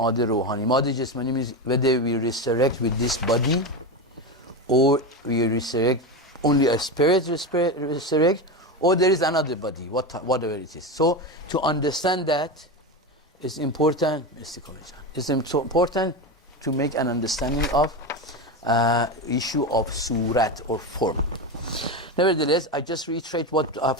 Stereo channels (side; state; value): both; normal; correlation 0.18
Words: Ruhani. Ma'ad Jasmani means whether we resurrect with this body or we resurrect, only a spirit resurrect, or there is another body, whatever it is. So, to understand that is important. It's important to make an understanding of issue of Sowret or form. Nevertheless, I just reiterate what I've